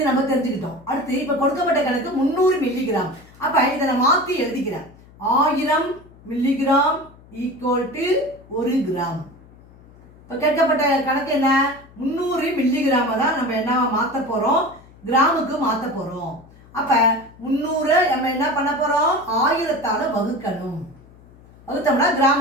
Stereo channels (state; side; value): noise; left; hum, 24 dB below the sound